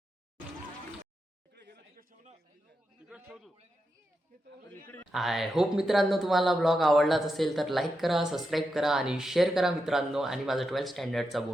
आय होप मित्रांनो तुम्हाला ब्लॉग आवडलाच असेल तर लाईक करा, सबस्क्राईब करा आणि शेअर करा मित्रांनो. आणि माझा 12th स्टँडर्डचा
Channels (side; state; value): both; normal; correlation 0.87